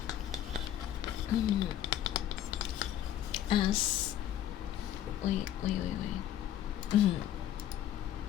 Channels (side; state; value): right; quieter; 11.4 dB